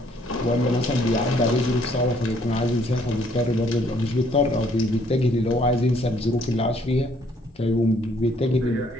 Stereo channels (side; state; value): both; normal; correlation 0.65